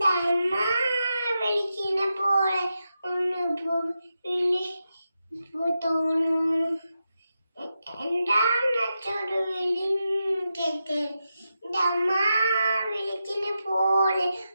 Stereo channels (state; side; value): inverted; both; correlation -0.88